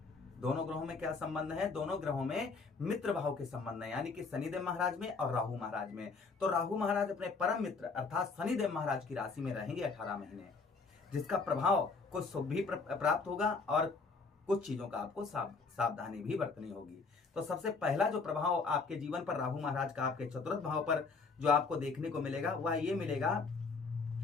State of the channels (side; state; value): right; quieter; 4.4 dB